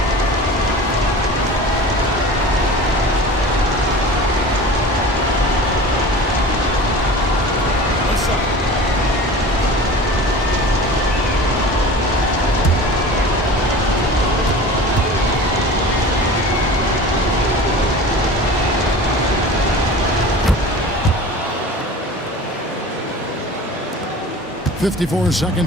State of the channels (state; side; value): normal; both; correlation 0.37